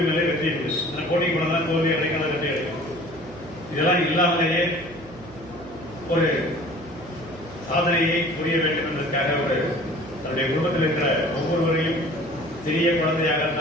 இல்லை, வெற்றி இல்லை. அந்த போட்டி கூட தான் தோல்வி அடைக்காத வெற்றி அடைக்கும். இதெல்லாம் இல்லாமலேயே ஒரு சாதனையை புரிய வேண்டும் என்பதற்காக ஒரு தன்னுடைய குடும்பத்தில் இருக்கிற ஒவ்வொருவரையும் சிறிய குழந்தையாக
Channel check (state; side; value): noise; right; hum, 19 dB below the sound